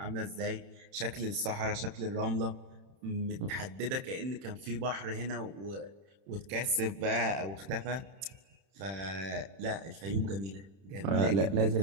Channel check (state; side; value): late; left; 31 ms